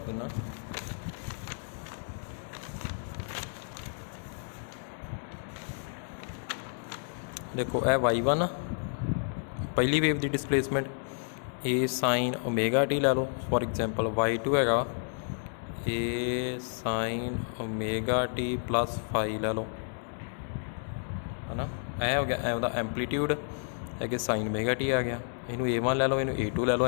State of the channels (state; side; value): silent; right; digital silence